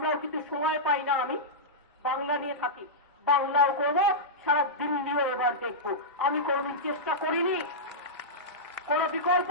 কিন্তু সময় পাই না, আমি বাংলা নিয়ে থাকি, বাংলাও করবো, সারা দিল্লিও এবার দেখবো। আমি কোনদিন চেষ্টা করিনি, কোন বিকল্প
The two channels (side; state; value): both; normal; correlation -0.12